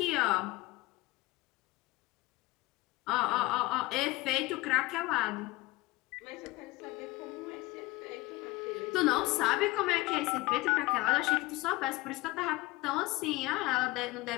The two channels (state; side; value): quieter; right; 20.7 dB